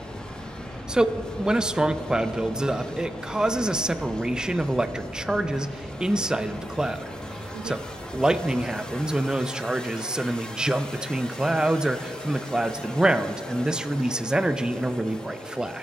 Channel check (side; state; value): both; normal; correlation 0.91